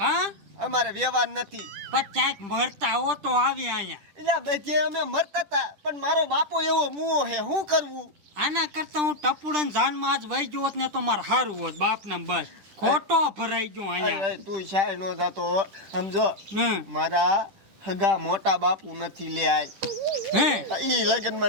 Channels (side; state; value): left; late; 10 ms